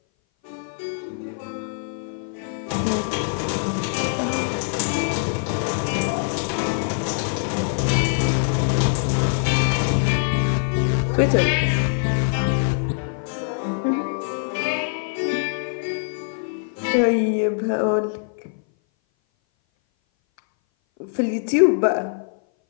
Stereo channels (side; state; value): right; silent; 58 dB below the other